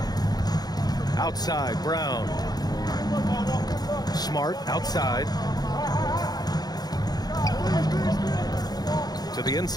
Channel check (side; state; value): right; late; 0.19 ms